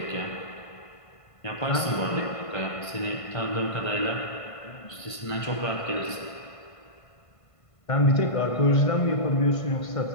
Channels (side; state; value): right; late; 1.5 ms